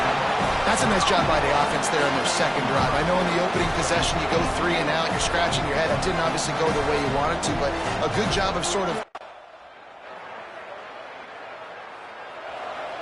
That's a nice job by the offense there in their second drive. I know in the opening possession you go 3 and out, you're scratching your head. That didn't obviously go the way you wanted to, but a good job of sort of...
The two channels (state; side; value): identical; both; correlation 1.00